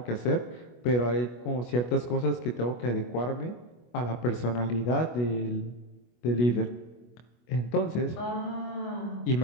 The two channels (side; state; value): right; late; 25 ms